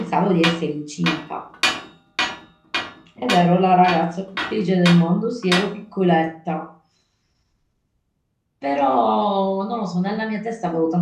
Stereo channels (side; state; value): both; identical; correlation 1.00